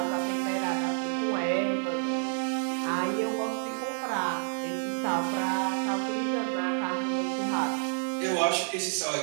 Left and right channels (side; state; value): left; silent; digital silence